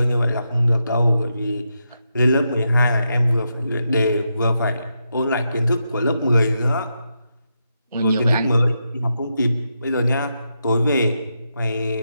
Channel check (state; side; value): inverted; both; correlation -0.85